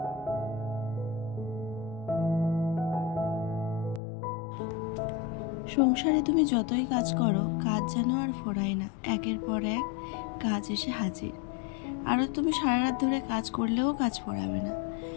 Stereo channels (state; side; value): drops out; right; at 4.0 s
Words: সংসারে তুমি যতই কাজ করো, কাজ যেন আর ফোরায় না, একের পর এক কাজ এসে হাজির। আরও তুমি সারা রাত ধরে কাজ করলেও কাজ ফোরাবে না।